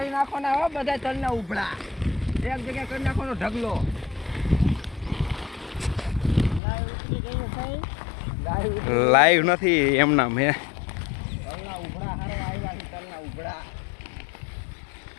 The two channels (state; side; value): drops out; right; at 6.6 s